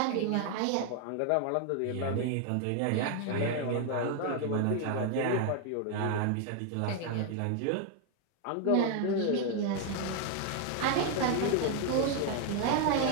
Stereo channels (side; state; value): both; different; correlation 0.01